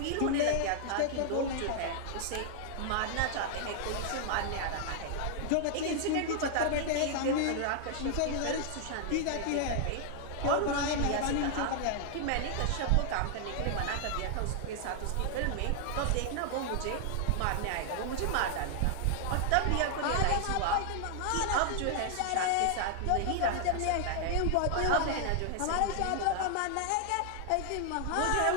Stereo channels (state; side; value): different; both; correlation 0.00